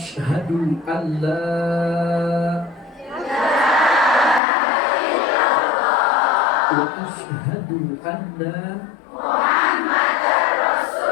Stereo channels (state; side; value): drops out; right; at 4.4 s